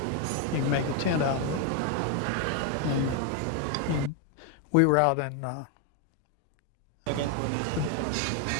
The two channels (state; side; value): different; both; correlation 0.01